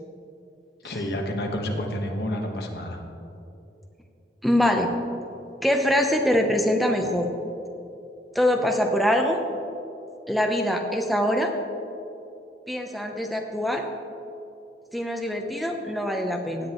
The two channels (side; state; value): both; normal; correlation 0.69